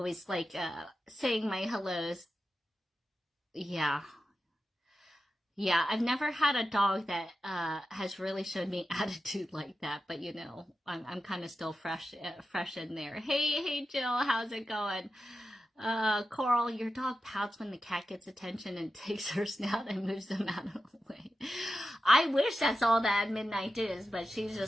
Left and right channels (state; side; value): normal; both; correlation 0.91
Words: like saying my hellos. Yeah, I've never had a dog that has really shown me attitude like that, but you know, I'm kind of still fresh in there. Hey Jill, how's it going? Coral, your dog pouts when the cat gets attention and takes her snout and moves them out of the way. I wish that's all that midnight is, but she's